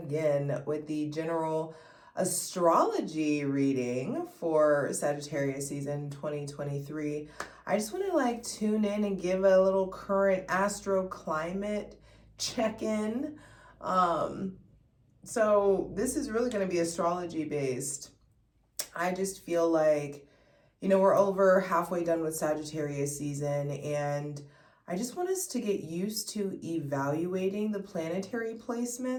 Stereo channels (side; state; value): both; identical; correlation 1.00